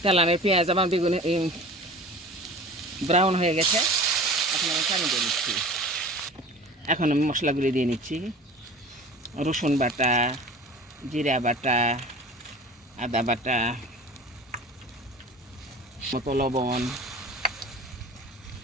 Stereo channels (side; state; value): both; normal; correlation 0.39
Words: তেলানের পেঁয়াজ আমার বেগুন ব্রাউন হয়ে গেছে, এখন আমি পানি দিয়ে নিচ্ছি। এখন আমি মশলাগুলি দিয়ে নিচ্ছি। রসুন বাটা, জিরা বাটা, আদা বাটা, মতো লবণ,